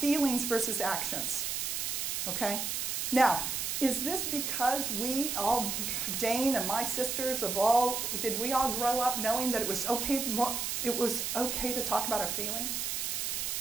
versus actions. Okay? Now, is this because we all, Jane and my sisters, did we all grow up knowing that it was okay to talk about our feelings?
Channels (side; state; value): right; noise; hiss, 1 dB below the sound